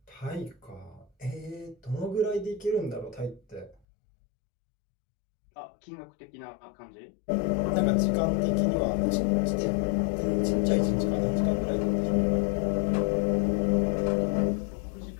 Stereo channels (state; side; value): drops out; right; at 3.8 s